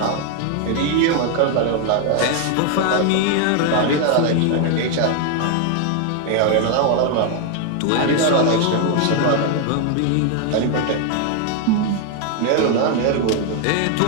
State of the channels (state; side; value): different; both; correlation 0.01